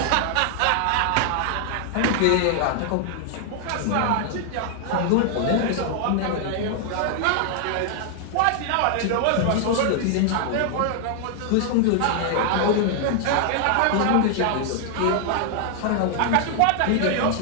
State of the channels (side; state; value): both; different; correlation 0.00